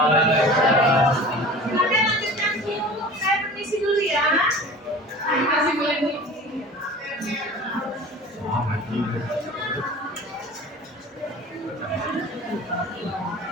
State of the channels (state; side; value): normal; both; correlation 0.39